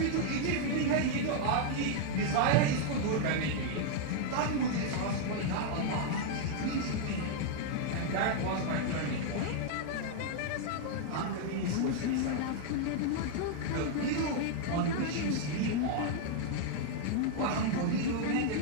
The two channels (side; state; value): both; different; correlation 0.00